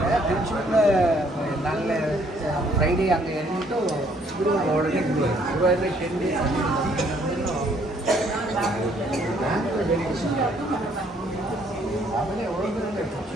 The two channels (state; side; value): normal; both; correlation 0.65